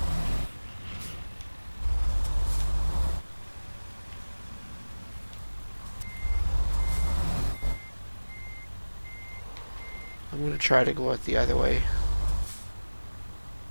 I'm going to try to go out the other way.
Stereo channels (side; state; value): both; inverted; correlation -1.00